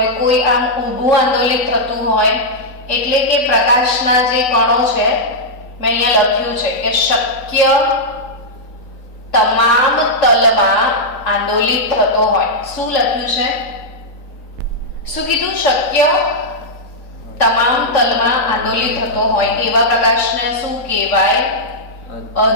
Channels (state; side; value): late; right; 3.9 ms